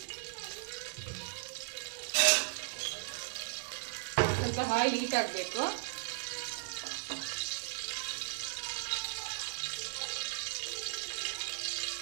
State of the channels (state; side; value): silent; left; digital silence